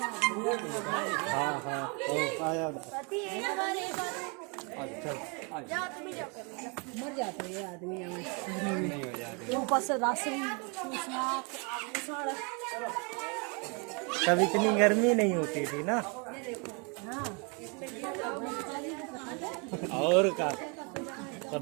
हाँ आ जाओ। अच्छा मर जाते हैं आदमी नहीं हो जाते। ऊपर से राशन तब इतनी गर्मी नहीं होती थी ना। और का तब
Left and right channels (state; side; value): quieter; left; 33.7 dB